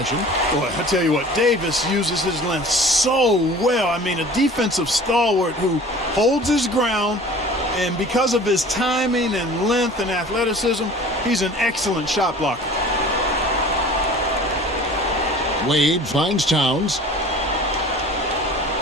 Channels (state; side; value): normal; both; correlation 0.44